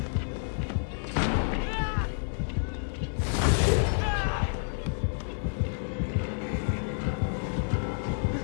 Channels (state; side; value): silent; right; digital silence